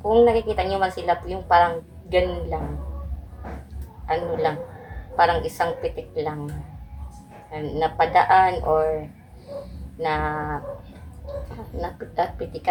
Kung nakikita niyo man sila yung parang ganun lang. Parang isang pitik lang. Napadaan or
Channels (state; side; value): identical; both; correlation 1.00